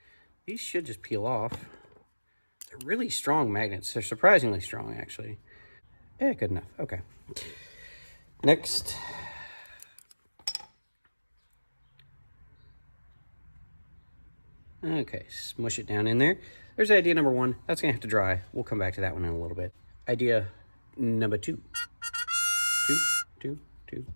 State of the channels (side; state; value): both; inverted; correlation -1.00